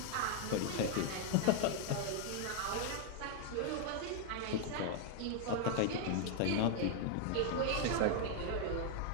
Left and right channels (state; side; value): different; both; correlation 0.00